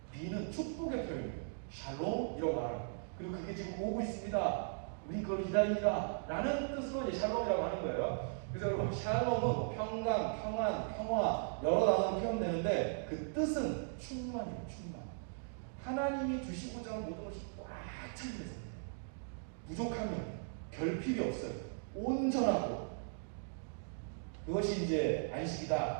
비는 축복의 표현이에요. 샬롬 이라고 말하는 거예요. 그리고 그게 지금 오고 있습니다. 우리 그걸 기다린다 라는 뜻으로 이제 샬롬이라고 하는 거예요. 그래서 여러분 샬롬은 평강, 평안, 평화 여러 단어로 표현되는데 그 뜻은 충만이에요. 충만. 하나님이 주시고자 하는 모든 것이 꽉 찬 데서 부족하면 결핍이 없어요. 온전하고 그것이 이제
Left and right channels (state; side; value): silent; left; digital silence